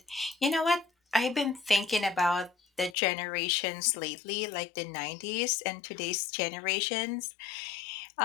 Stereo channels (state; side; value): drops out; right; at 3.0 s